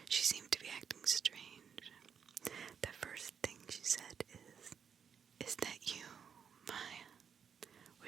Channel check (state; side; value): quieter; left; 7.2 dB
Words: she seemed to be acting strange. The first thing she said is that you, Maya?